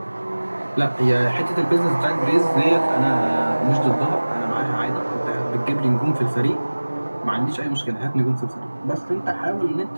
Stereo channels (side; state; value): both; inverted; correlation -1.00